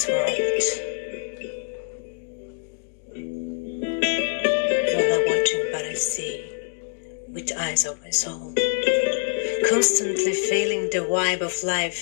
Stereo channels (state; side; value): silent; right; digital silence